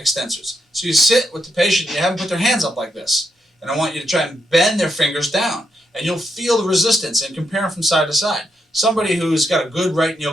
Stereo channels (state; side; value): normal; both; correlation 0.81